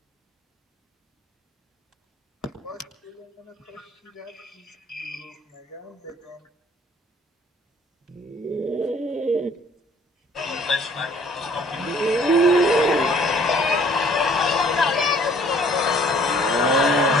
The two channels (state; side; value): normal; both; correlation 0.57